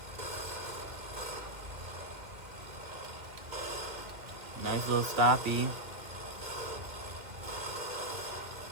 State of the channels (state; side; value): late; left; 2.1 ms